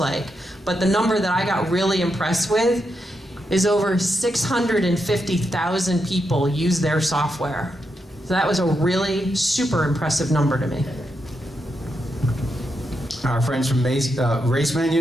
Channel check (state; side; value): normal; both; correlation 0.84